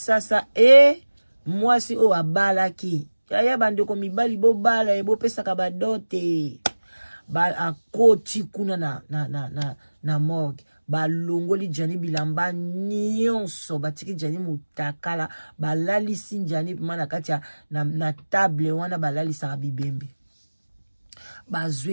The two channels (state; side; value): inverted; both; correlation -1.00